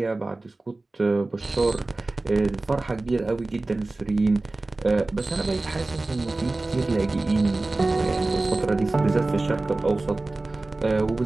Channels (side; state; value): left; quieter; 3.1 dB